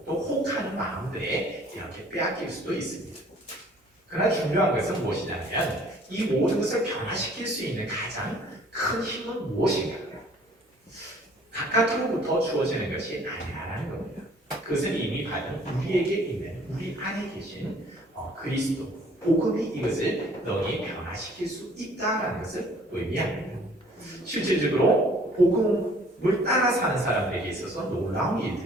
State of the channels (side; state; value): both; normal; correlation 0.55